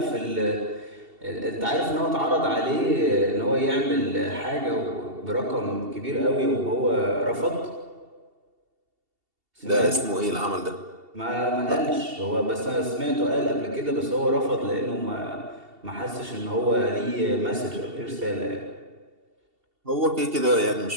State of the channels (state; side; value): late; left; 2.7 ms